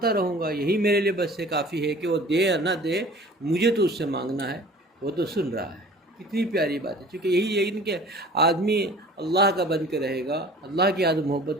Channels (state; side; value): normal; both; correlation 0.46